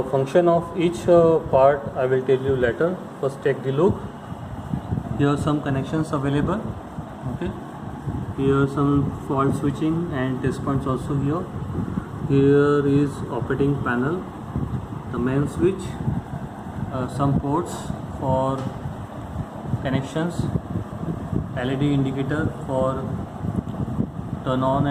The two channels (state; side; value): identical; both; correlation 1.00